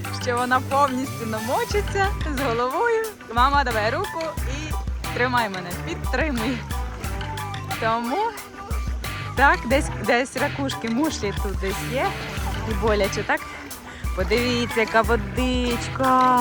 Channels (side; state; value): both; identical; correlation 1.00